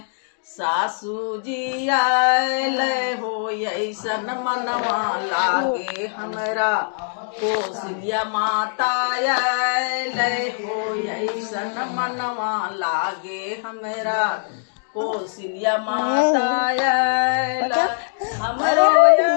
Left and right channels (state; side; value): silent; right; digital silence